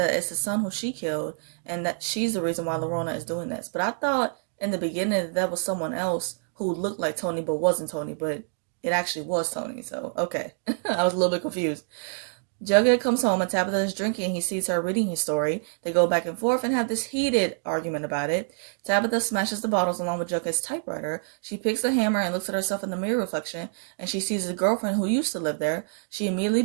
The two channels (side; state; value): left; silent; digital silence